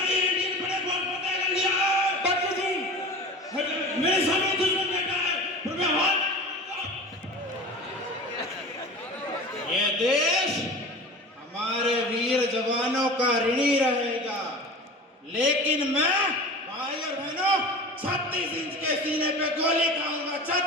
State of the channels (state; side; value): normal; both; correlation 0.35